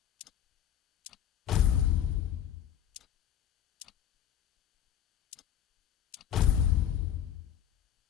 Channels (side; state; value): right; quieter; 10.3 dB